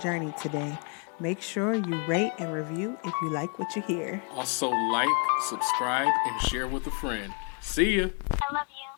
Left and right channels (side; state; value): right; quieter; 35.2 dB